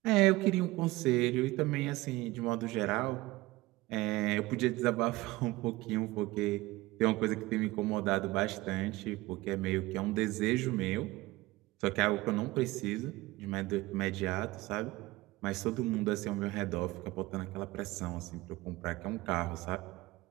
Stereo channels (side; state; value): left; quieter; 19.8 dB